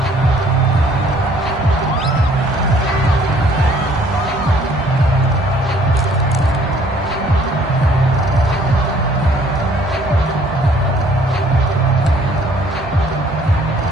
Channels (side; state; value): both; normal; correlation 0.59